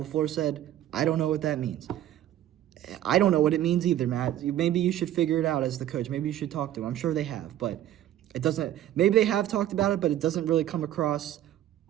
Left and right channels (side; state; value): left; quieter; 12.4 dB